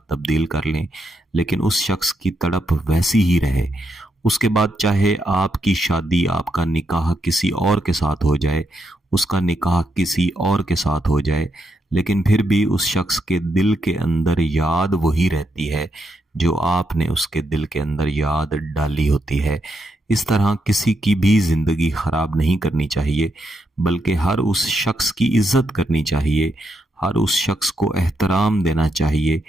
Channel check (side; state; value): both; normal; correlation 0.81